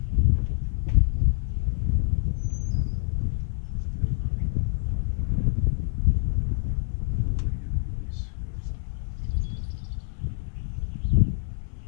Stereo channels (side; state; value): right; silent; digital silence